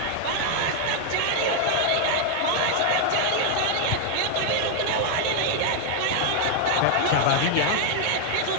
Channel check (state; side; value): different; both; correlation 0.00